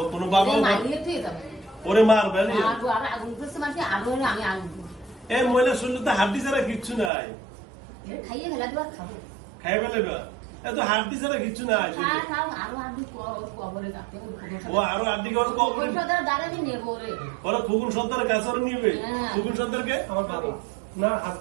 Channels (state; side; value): drops out; left; at 7.1 s